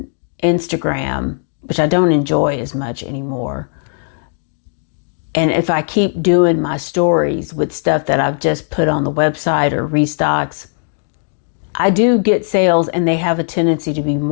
Instagram, which I don't enjoy as much anymore, and if I keep doing my stories with stuff that I've just put on the website or restocks, I do get sales, and they have a tendency to be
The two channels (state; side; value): silent; right; 68 dB below the other